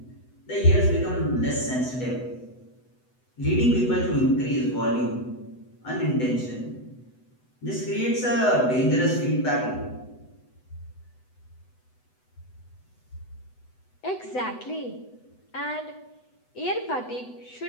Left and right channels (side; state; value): right; late; 8.0 ms